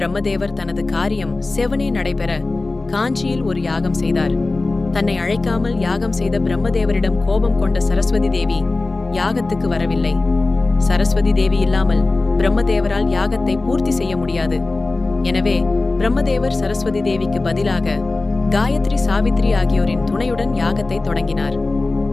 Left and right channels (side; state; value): right; quieter; 3.3 dB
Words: தனது காரியம் செவனே நடைபெற காஞ்சியில் ஒரு யாகம் செய்தார். தன்னை அழைக்காமல் யாகம் செய்த பிரம்மதேவரிடம் கோபம் கொண்ட சரஸ்வதி தேவி யாகத்துக்கு வரவில்லை. சரஸ்வதி தேவி இல்லாமல் பிரம்மதேவரால் யாகத்தை பூர்த்தி செய்ய முடியாது. எனவே பிரம்மதேவர் சரஸ்வதி தேவிக்கு பதிலாக காயத்ரி, சாவித்ரி ஆகியோரின் துணையுடன் யாகத்தை தொடங்கினார்.